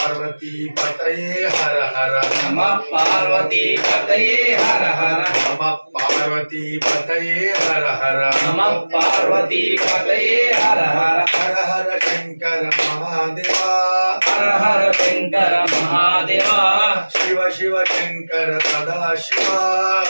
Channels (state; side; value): inverted; both; correlation -1.00